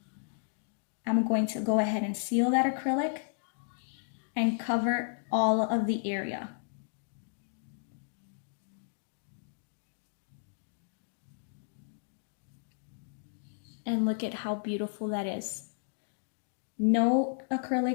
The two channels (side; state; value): right; silent; digital silence